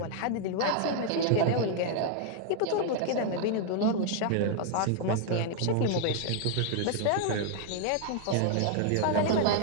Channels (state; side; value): different; both; correlation 0.00